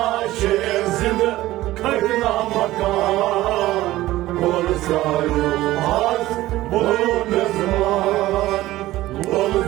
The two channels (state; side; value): quieter; left; 16.3 dB